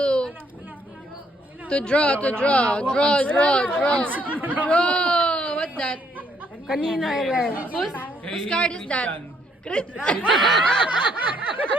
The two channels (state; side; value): normal; both; correlation 0.70